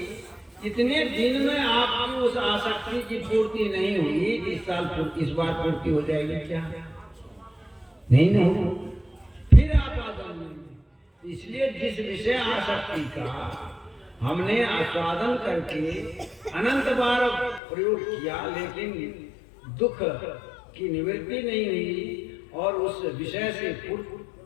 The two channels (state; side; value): drops out; right; at 17.6 s